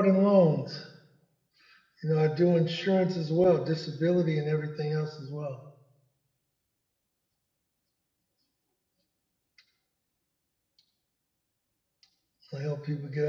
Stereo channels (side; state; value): both; identical; correlation 1.00